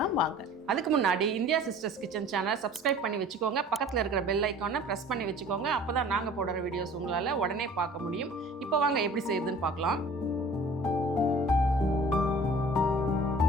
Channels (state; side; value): normal; both; correlation 0.47